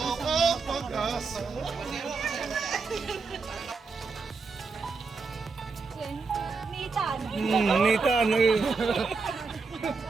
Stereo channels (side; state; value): left; quieter; 4.5 dB